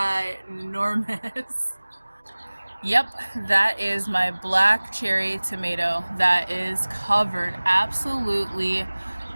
Yep, that is my black cherry tomato that is covered, absolutely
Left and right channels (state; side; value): inverted; both; correlation -1.00